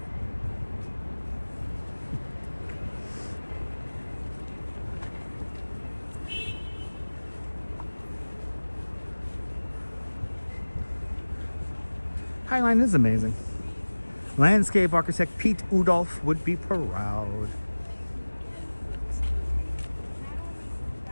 Highline is amazing. Landscape architect Pete Udolph would be proud.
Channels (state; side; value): inverted; both; correlation -1.00